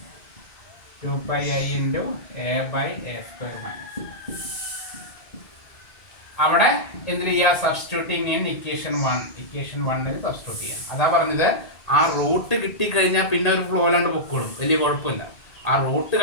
2 pi I into a by a square minus. അവിടെ എന്തിനു ചെയ്യുക? സബ്സ്റ്റിറ്റ്യൂട്ടിങ് ഇൻ ഇക്വേഷൻ 1 സബ്സ്റ്റിറ്റ്യൂട്ട് ചെയ്യാം. അതാ പറഞ്ഞത്, ആ റൂട്ട് കിട്ടിക്കഴിഞ്ഞാൽ പിന്നെ ഒരു ഫ്ലോ അല്ലാണ്ട് പൊക്കോളും, വലിയ കുഴപ്പമില്ല. ആ റൂട്ട്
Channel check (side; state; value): right; late; 1.8 ms